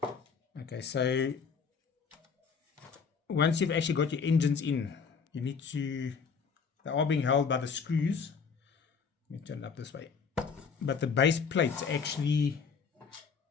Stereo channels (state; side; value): quieter; right; 5.8 dB